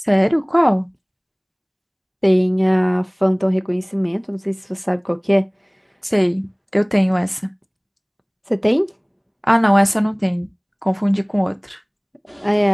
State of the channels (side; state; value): both; identical; correlation 1.00